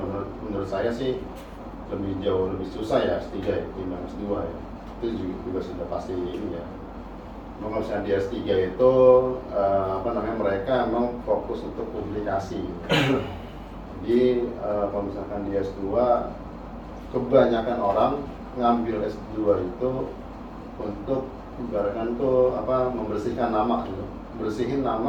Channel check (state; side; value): identical; both; correlation 1.00